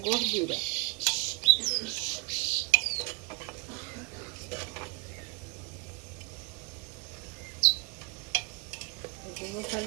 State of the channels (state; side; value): quieter; left; 30.3 dB